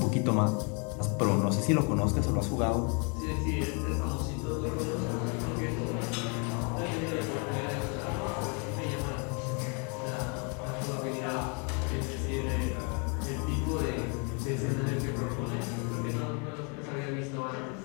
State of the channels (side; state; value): right; quieter; 35.2 dB